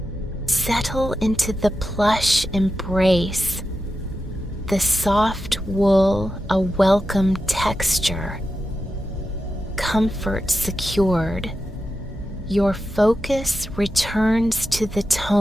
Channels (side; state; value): both; normal; correlation 0.90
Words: Settle into the plush embrace, the soft wool a welcome texture. Comfort secured, your focus returns to the